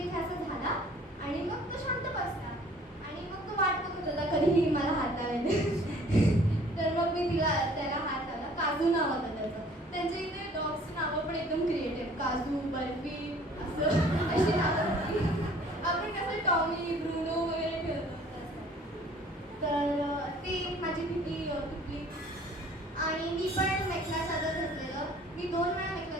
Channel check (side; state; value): both; normal; correlation 0.54